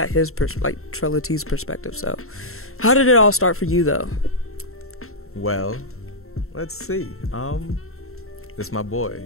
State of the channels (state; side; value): late; right; 0.62 ms